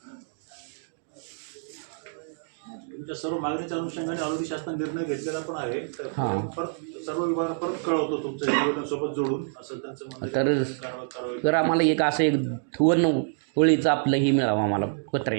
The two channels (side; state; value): left; silent; digital silence